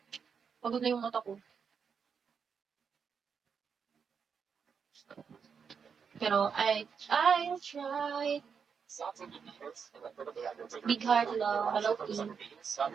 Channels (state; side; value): quieter; left; 6.4 dB